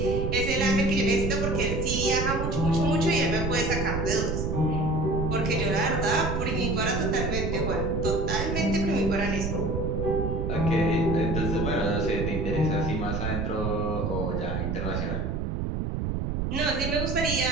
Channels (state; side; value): noise; right; rumble, 1 dB below the sound